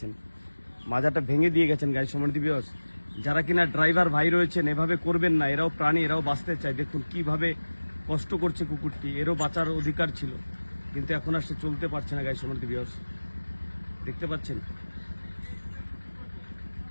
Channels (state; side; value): inverted; both; correlation -1.00